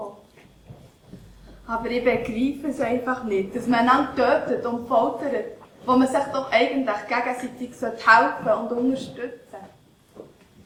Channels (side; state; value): both; identical; correlation 1.00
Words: Aber ich begreife es einfach nicht, dass man einander tötet und foltert, wo man sich doch eigentlich gegenseitig helfen und unterstützen